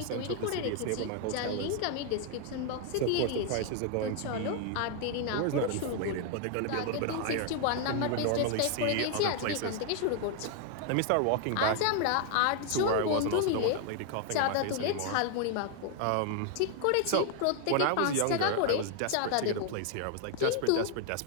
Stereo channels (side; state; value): both; different; correlation 0.00